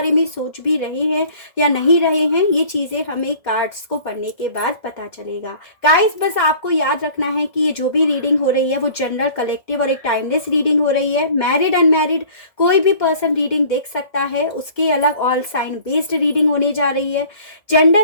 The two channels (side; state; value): right; late; 1.7 ms